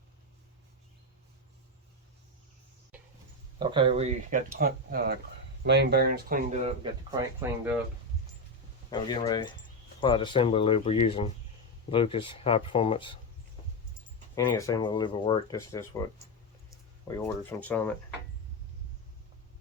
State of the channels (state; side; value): normal; both; correlation 0.09